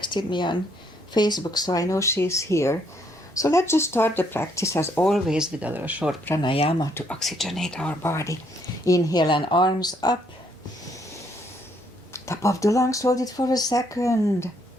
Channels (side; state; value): both; normal; correlation 0.70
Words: me on Facebook, so I know she's here. So let's just start the practice as always with a little short pranayama to oxygenate our body. Inhale and arms up. Top of the lungs, hold it for a second.